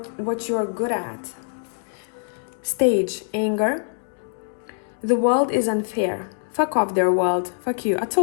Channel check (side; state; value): right; silent; digital silence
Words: you're good at. Stage, anger. The world is unfair. Fuck off their world. Fuck you. I